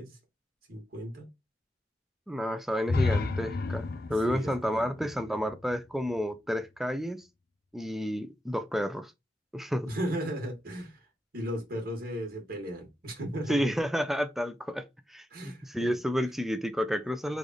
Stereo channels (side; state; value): both; normal; correlation 0.87